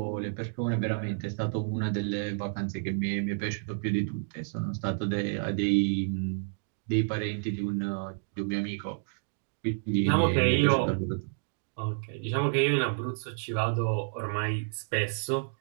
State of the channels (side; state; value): left; silent; digital silence